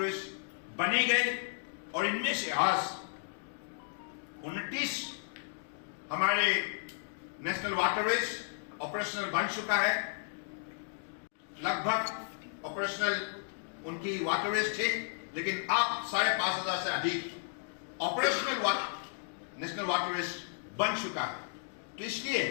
बने गए, और इनमें से आज 29 हमारे नेशनल वाटरवेज ऑपरेशनल बन चुका है। लगभग ऑपरेशनल उनकी वाटरवेज थे, लेकिन अब 5,500 से अधिक ऑपरेशनल नेशनल वाटरवेज बन चुका है। तो इसलिए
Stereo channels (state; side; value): silent; right; digital silence